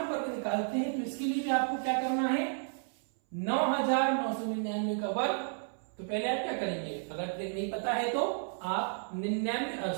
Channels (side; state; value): left; silent; 56 dB below the other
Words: वर्ग निकालते हैं। तो इसके लिए भी आपको क्या करना है, 9999 का वर्ग। तो पहले आप क्या करेंगे, अगर ट्रिक नहीं पता है तो आप